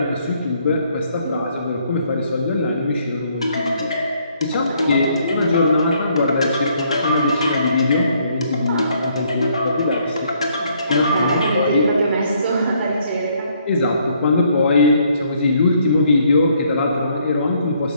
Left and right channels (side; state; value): both; inverted; correlation -0.68